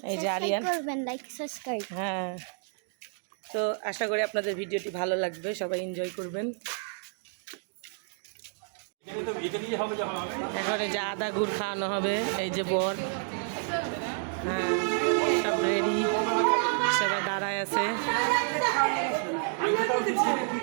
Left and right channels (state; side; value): silent; left; 56 dB below the other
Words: এই যে আরিয়ান, হ্যাঁ। তো আশা করি আপনাদের ভিডিওটি ভালো লাগবে, সবাই এনজয় করবেন। এখন এই যে আদা গুড় খাওয়ানো হবে, এই যে বর, হ্যাঁ সব রেডি, সবাই দাঁড়ায় আছে।